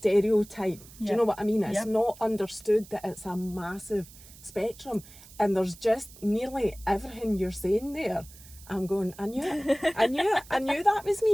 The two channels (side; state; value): right; noise; hiss, 20 dB below the sound